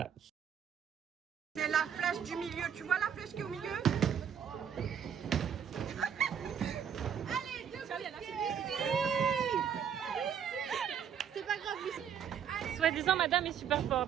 C'est la flèche du milieu. Tu vois la flèche qui est au milieu? C'est pas grave, Lucie. Soi-disant, madame est super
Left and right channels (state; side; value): quieter; left; 8.1 dB